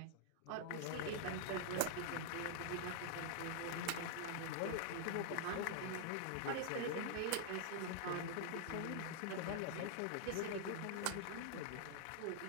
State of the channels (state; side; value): different; both; correlation -0.01